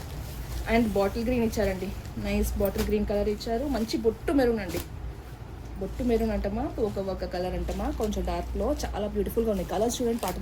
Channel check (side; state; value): both; identical; correlation 1.00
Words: అండ్ బాటిల్ గ్రీన్ ఇచ్చారండి, నైస్ బాటిల్ గ్రీన్ కలర్ ఇచ్చారు. మంచి బొట్టు మెరూన్ అండి, బొట్టు మెరూన్ అంటమా ఒక కలర్ అంటమా కొంచెం డార్క్లో చాలా బ్యూటిఫుల్గా ఉన్నాయి కలర్స్. చూడండి